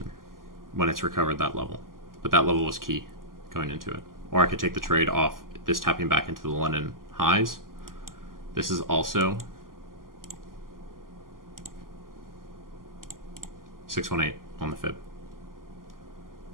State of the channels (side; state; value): left; late; 0.91 ms